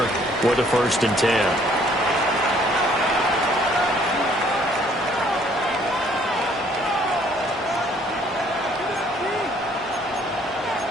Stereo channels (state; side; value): normal; both; correlation 0.61